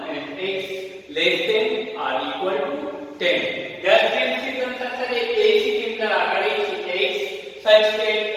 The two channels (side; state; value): both; identical; correlation 1.00